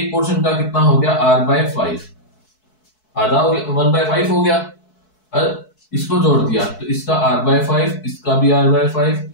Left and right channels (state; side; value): late; right; 4.6 ms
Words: पोर्शन का कितना हो गया, R/5, आधा हो गया, 1/5 हो गया। और इसको जोड़ दिया तो इसका R/5, इसका भी R/5,